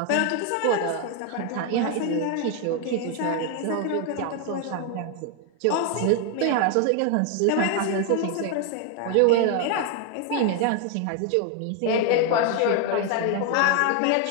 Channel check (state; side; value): different; both; correlation 0.01